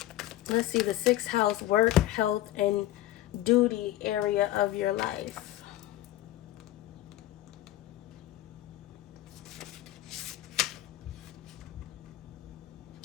Let's see, the 6th house, work, health, and duty area of your life.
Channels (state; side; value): quieter; right; 14.6 dB